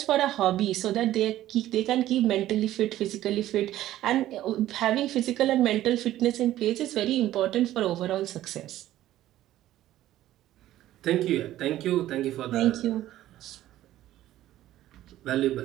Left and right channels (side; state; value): left; quieter; 13.9 dB